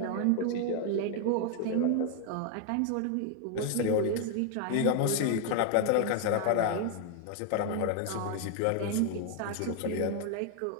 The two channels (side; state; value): both; different; correlation 0.00